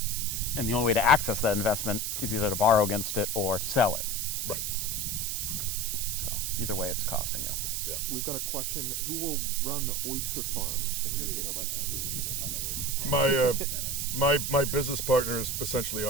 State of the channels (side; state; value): right; noise; hiss, 1 dB below the sound